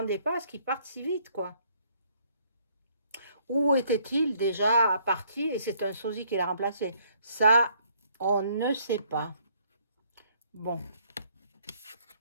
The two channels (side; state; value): both; inverted; correlation -0.65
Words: pas à ce qu'il parte si vite, quoi. Où était-il déjà parti et c'est un sosie qui l'a remplacé? Ça, on ne sait pas. Bon.